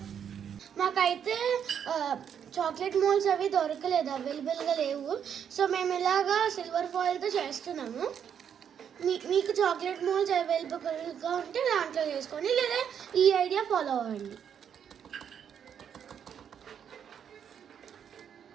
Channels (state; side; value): quieter; left; 8.3 dB